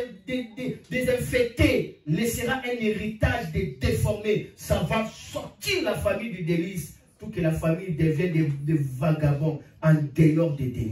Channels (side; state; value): both; identical; correlation 1.00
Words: des infectés, laissera un héritage des déformés. Ça va sortir la famille du délice pour que la famille devienne des vagabonds en dehors des